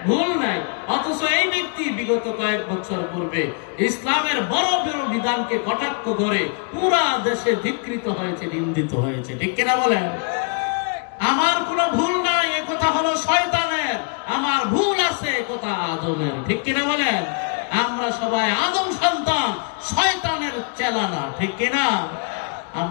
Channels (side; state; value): right; quieter; 38.5 dB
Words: ভুল নাই। অথচ এই ব্যক্তি বিগত কয়েক বছর পূর্বে ইসলামের বড় বড় বিধানকে কটাক্ষ করে পুরা দেশে ধিক্কৃত হয়েছে, নিন্দিত হয়েছে, ঠিক কিনা বলেন? আমার কোনো ভুল নাই এ কথা হলো শয়তানের, আমার ভুল আছে এ কথা আদমের, ঠিক কিনা বলেন? আমরা সবাই আদম সন্তান, শয়তানের চেলা না, ঠিক কিনা?